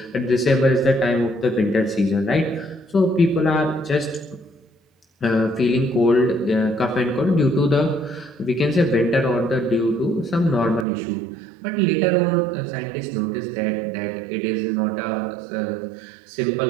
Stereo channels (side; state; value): left; drops out; at 10.9 s